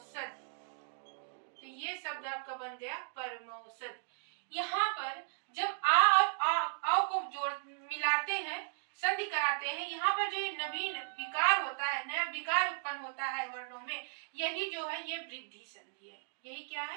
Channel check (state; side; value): silent; left; digital silence